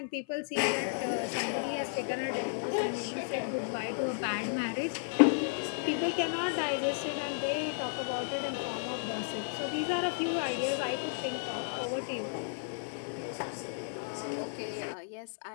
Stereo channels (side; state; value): right; silent; 55 dB below the other